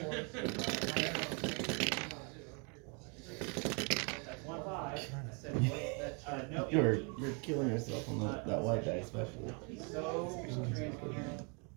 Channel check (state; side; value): quieter; left; 35.0 dB